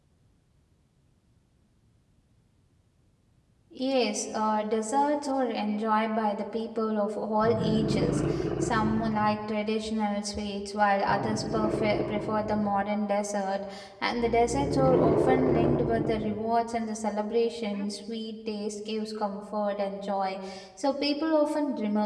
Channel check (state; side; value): identical; both; correlation 1.00